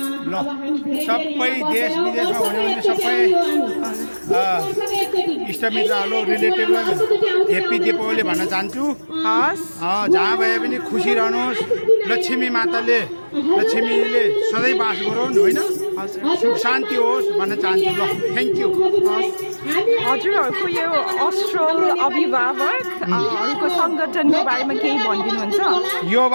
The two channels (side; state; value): both; inverted; correlation -1.00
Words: सबै देश विदेशमा हुनुहुन्छ सबै इष्टमित्रहरू रिलेटिभलाई हेप्पी दीपावली भन्न चाहन्छु। जहाँ भए पनि खुसी रहनुहोस्। लक्ष्मी माताले लक्ष्मीले सधैँ बास गरून् होइन, सुख शान्ति होस् भन्न चाहन्छु। ल थ्याङ्क यू। हजुरहरूको यो अस्ट्रल अभिभावकहरूको सङ्गठनको बारेमा केही भनिदिनुहुन्छ? यो